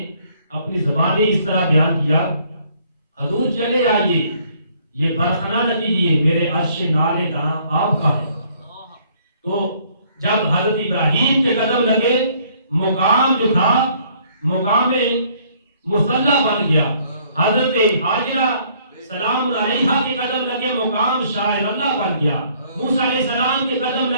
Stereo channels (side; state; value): both; inverted; correlation -0.63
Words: اپنی زبان میں اس طرح بیان کیا، حضور چلے آئیے یہ برخنا نہ کیجیے، میرے عرش نالے داں آپ کا ہے۔ تو جب حضرت ابراہیم کے قدم لگے، مقام جو تھا مقام مصلی بن گیا، حضرت حاجرہ سلام علیہا کے قدم لگے، مقام شاعر اللہ بن گیا، موسیٰ علیہ السلام کے قدم